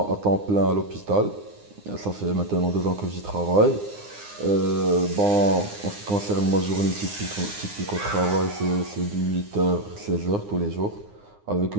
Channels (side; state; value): left; late; 9.7 ms